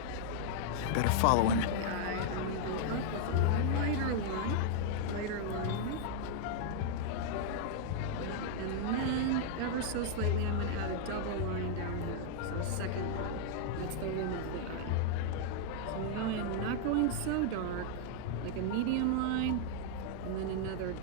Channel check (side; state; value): both; different; correlation -0.01